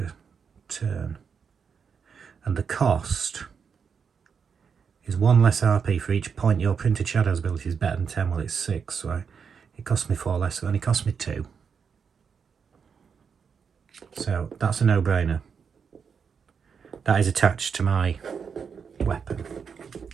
turn. And the cost is 1 less RP for each point your printed shadows ability is better than 10. Well, it's 6, so it cost me 4 less, so it only cost me 2. So that's a no-brainer. That is attached to my weapon.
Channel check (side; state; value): left; quieter; 6.4 dB